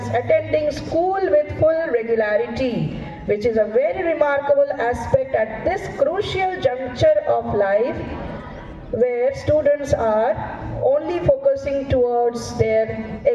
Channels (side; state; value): both; identical; correlation 1.00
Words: attending school with full regularity, which is a very remarkable aspect at this crucial juncture of life where students are only focused focusing towards their